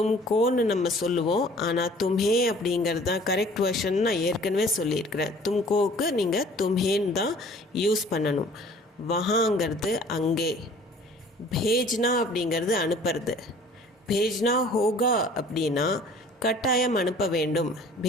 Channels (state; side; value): normal; both; correlation 0.51